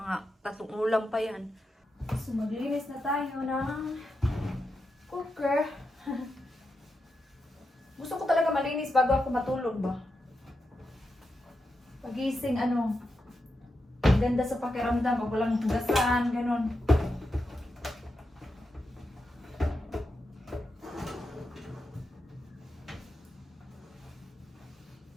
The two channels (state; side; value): normal; both; correlation 0.87